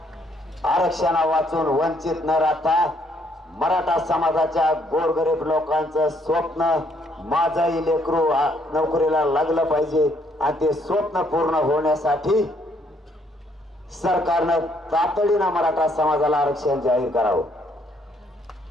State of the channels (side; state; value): both; normal; correlation 0.69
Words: आरक्षणा वाचून वंचित न राहता मराठा समाजाच्या गोरगरीब लोकांचं स्वप्न, माझाही लेकरू नोकरीला लागलं पाहिजे, आणि ते स्वप्न पूर्ण होण्यासाठी सरकारनं तातडीनं मराठा समाजाला आरक्षण जाहीर करावं.